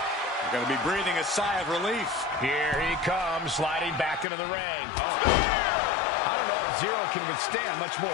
going to be breathing a sigh of relief. Here he comes, sliding back into the ring. I don't know if Zero can withstand much more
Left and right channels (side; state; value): right; drops out; at 4.2 s